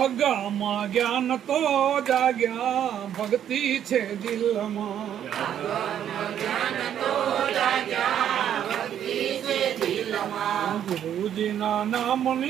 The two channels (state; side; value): quieter; left; 9.9 dB